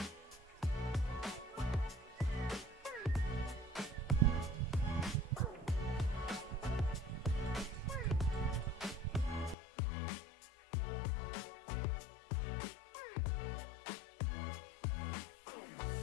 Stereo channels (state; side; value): drops out; right; at 9.6 s